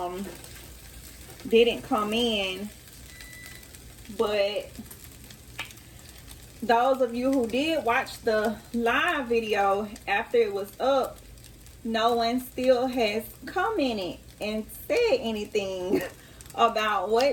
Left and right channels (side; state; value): both; identical; correlation 1.00